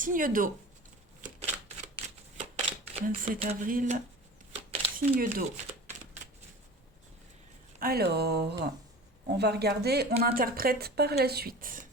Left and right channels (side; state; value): both; normal; correlation 0.37